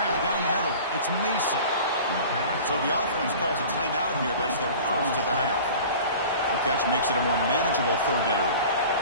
down the middle. It's Mason. So the offense calls a timeout here. That's their first of the half. The catch makes it a more manageable 3rd down.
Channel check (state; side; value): inverted; both; correlation -0.41